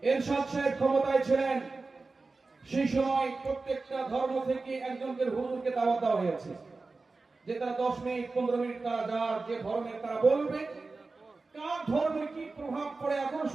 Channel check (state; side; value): quieter; left; 3.8 dB